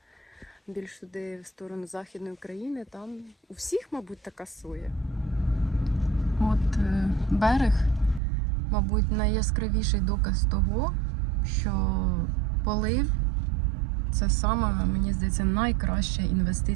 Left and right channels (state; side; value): drops out; left; at 8.2 s